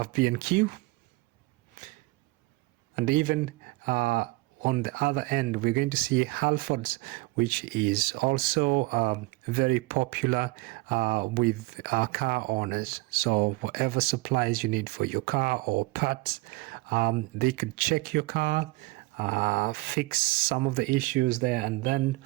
B&Q. And even on the other end, we're going to see Halfords, which is also very popular with car owners. So whatever supplies you need for your car or parts, they could check your car, fix some of the issues there, and then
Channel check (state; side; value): quieter; left; 22.7 dB